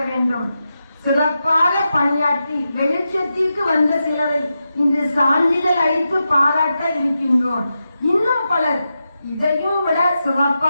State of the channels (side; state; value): both; inverted; correlation -0.89